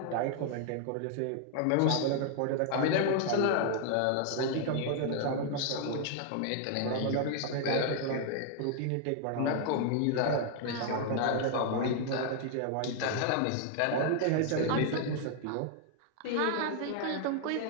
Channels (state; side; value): different; both; correlation 0.00